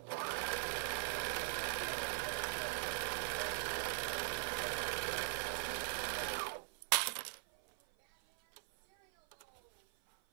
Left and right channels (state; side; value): silent; left; 51 dB below the other